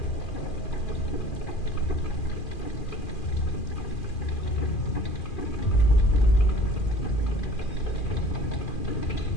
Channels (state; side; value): late; right; 2.4 ms